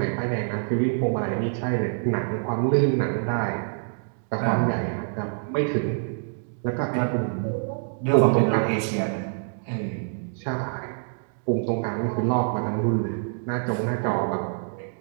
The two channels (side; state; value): left; silent; digital silence